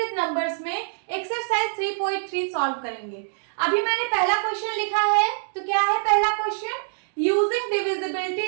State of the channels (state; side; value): silent; left; digital silence